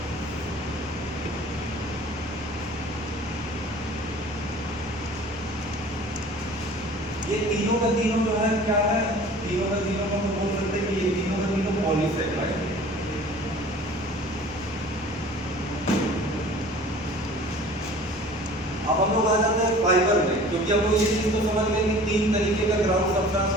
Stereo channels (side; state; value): both; normal; correlation 0.46